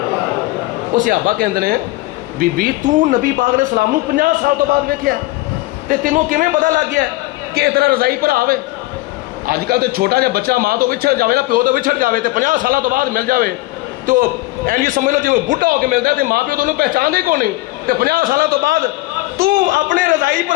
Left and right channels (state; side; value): quieter; right; 19.7 dB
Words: وہ صحابہ کہندے نے بی بی تو نبی پاک علیہ السلام نو 50 سال تو بعد ویکھیا تے تینوں کیویں پتہ لگ گیا کہ اتنا رضائی پر آوے آج کل تے چھوٹا جا بچہ ماں تو وچھڑ جاوے نا پیو تو وچھڑ جاوے تے 50 سالہ تو بعد مل جاوے تو این یہ سمجھ لو جی وہ بڈھا ہو کے ملتا ہے تے ماں پیو تو انہوں پہچان دے کو نہیں تے 50 سالہ تو بعد تو اپنے رضائی